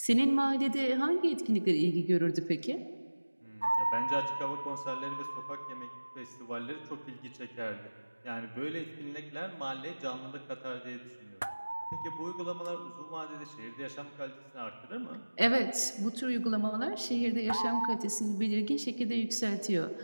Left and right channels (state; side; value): inverted; both; correlation -1.00